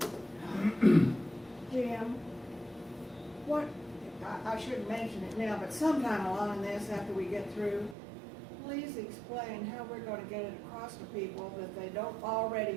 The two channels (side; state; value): left; drops out; at 8.0 s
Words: Jim, what, I shouldn't mention it now, but sometime along this, after we get through, please explain how we're gonna get it across to people that they don't